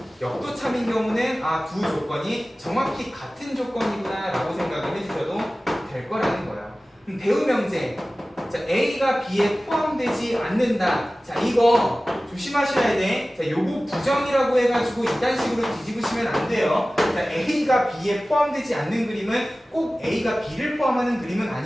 역도 참인 경우는 두 조건이 정확히 같은 조건이구나 라고 생각을 해주셔도 될 거라는 거예요. 대우 명제, 자, A가 B에 포함되지 않는다. 자, 이거 조심하셔야 돼. 자, 요거 부정이라고 해가지고 이딴 식으로 뒤집으시면 안 돼요. 자, A가 B에 포함되지 않는 그림은 꼭 A가 B를 포함하는 그림은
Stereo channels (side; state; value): both; normal; correlation 0.97